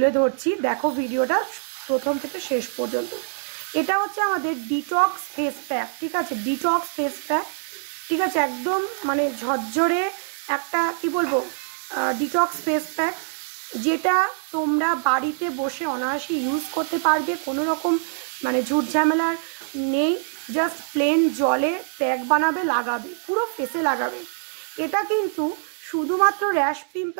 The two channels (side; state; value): left; silent; 57 dB below the other